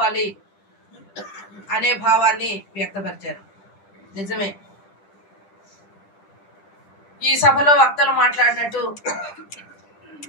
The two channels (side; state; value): right; late; 10 ms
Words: అనే భావాన్ని వ్యక్తపరిచారు. నిజమే, ఈ సభలో వక్తలు మాట్లాడినట్టు